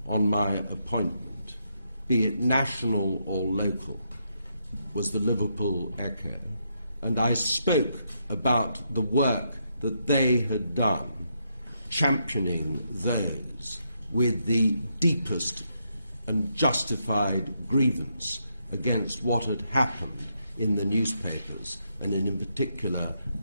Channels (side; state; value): both; inverted; correlation -0.79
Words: on my appointment, be it national or local, was the Liverpool Echo, and I spoke about the work that they had done, championing those with the deepest and justified grievance against what had happened in the newspapers, and in particular